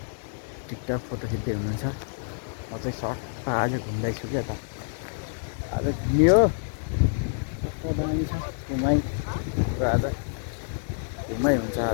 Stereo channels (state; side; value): silent; right; digital silence